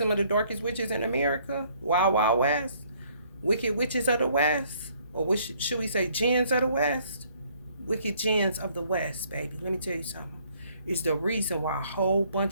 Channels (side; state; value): both; inverted; correlation -0.63